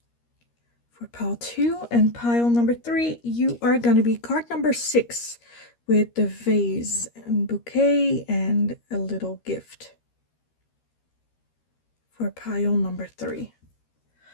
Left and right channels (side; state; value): right; late; 13 ms